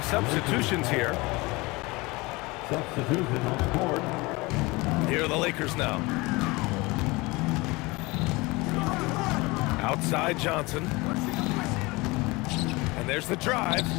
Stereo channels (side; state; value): right; quieter; 23.6 dB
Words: substitutions here. Substitution on the court. Here are the Lakers now. Outside Johnson. And there's the drive.